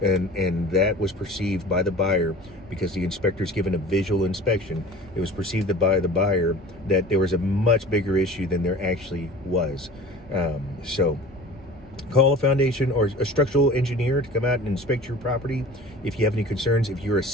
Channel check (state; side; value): normal; both; correlation 0.41